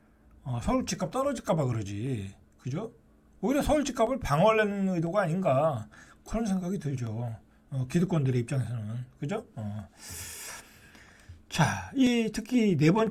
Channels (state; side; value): identical; both; correlation 1.00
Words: 서울 집값 떨어질까봐 그러지. 그죠? 오히려 서울 집값을 방어하려는 의도가 아닌가. 그런 생각이 들죠. 기득권들의 입장에서는. 그죠? 자, 특히 네